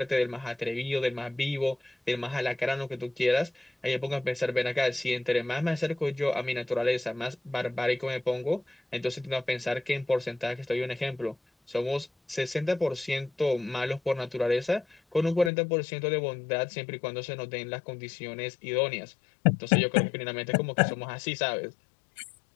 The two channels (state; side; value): drops out; right; at 15.5 s